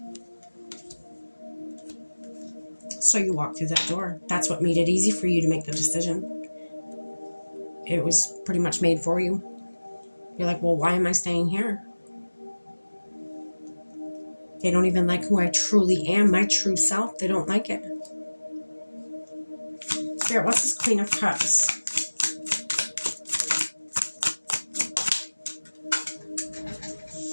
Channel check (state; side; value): inverted; both; correlation -1.00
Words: So you walked through that door. That's what made it easy for you to make the decision. It was pretty much made for you. You're like, well, why am I staying here? They don't even like who I truly am, my true self. They don't like it. Spirit, what's this Queen of Cups?